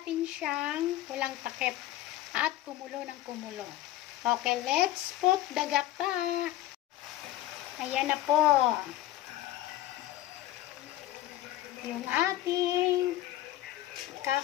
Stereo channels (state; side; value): quieter; right; 14.5 dB